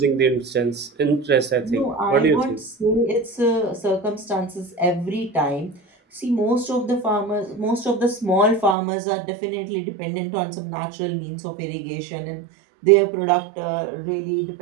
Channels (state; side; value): drops out; left; at 8.8 s